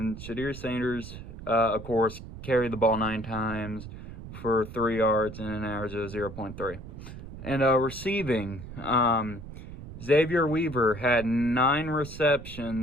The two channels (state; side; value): noise; right; rumble, 12 dB below the sound